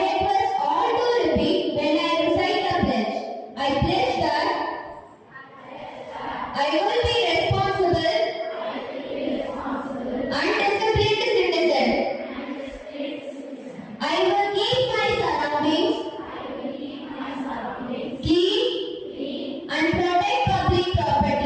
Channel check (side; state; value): both; identical; correlation 1.00